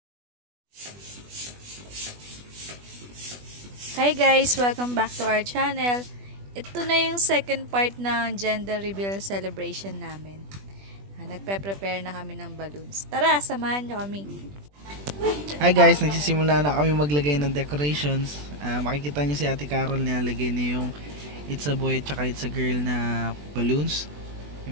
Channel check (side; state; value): left; late; 20 ms